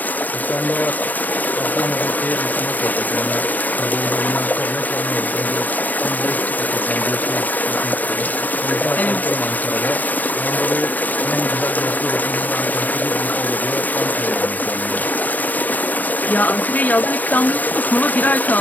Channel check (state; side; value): late; right; 0.083 ms